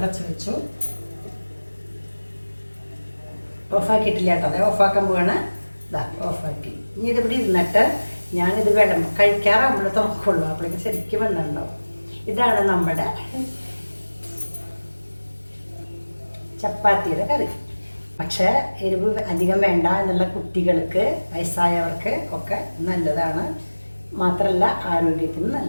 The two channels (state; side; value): inverted; both; correlation -1.00